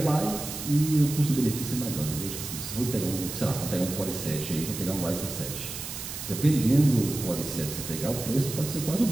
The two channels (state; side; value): noise; right; hiss, 8 dB below the sound